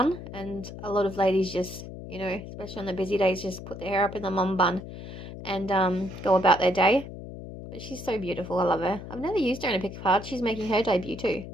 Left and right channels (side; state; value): left; noise; hum, 11 dB below the sound